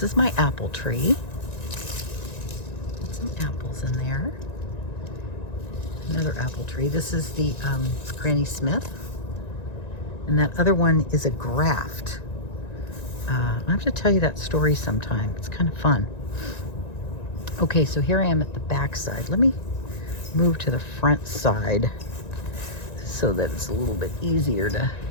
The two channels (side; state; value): right; late; 1.9 ms